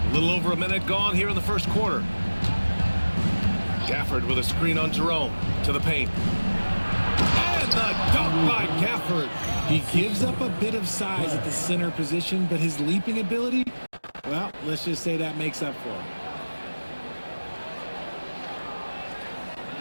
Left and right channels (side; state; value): both; inverted; correlation -1.00